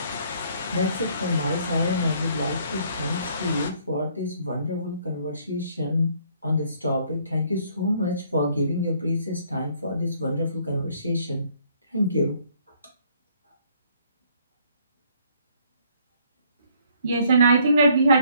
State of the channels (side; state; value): both; inverted; correlation -0.63